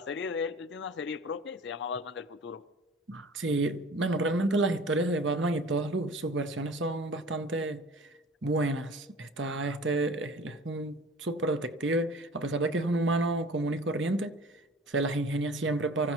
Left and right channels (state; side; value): normal; both; correlation 0.44